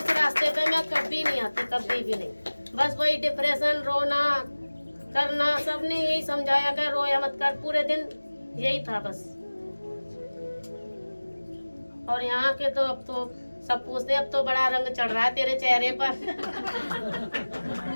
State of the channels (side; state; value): both; inverted; correlation -1.00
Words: रास्ते पे मैं कभी नहीं आती, कभी भी नहीं। बस वही डिप्रेशन, रोना करना, सबने यही समझाया कि रोया मत कर, पूरे दिन यही था बस। और यहाँ के तो अब तो सब पूछते, अब तो बड़ा रंग चढ़ रहा है तेरे चेहरे पर।